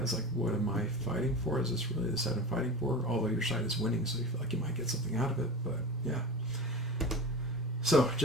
like, what am I fighting for? Is this really the side I'm fighting for? Although your side is winning, so you feel like you might get something out of it. But yeah. So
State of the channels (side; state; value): both; normal; correlation 0.30